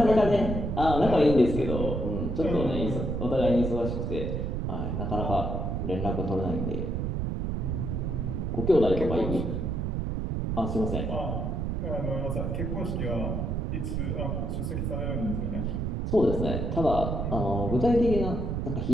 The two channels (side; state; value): right; noise; rumble, 1 dB below the sound